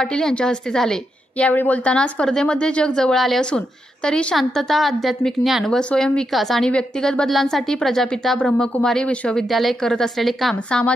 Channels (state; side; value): normal; both; correlation 0.83